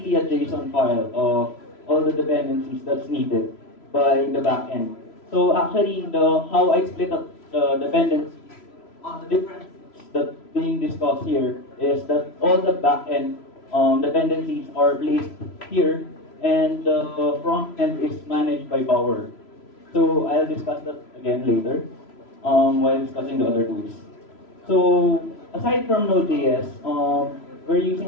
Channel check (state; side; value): late; right; 3.0 ms